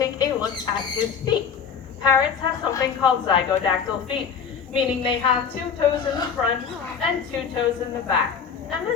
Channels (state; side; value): quieter; right; 6.8 dB